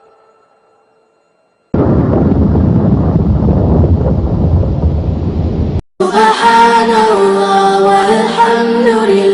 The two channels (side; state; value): both; identical; correlation 1.00